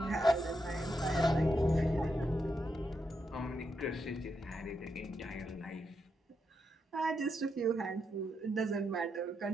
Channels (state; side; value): normal; both; correlation 0.82